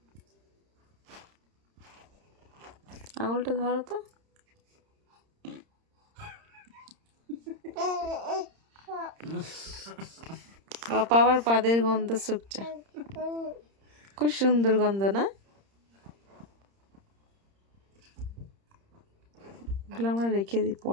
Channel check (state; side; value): late; left; 30 ms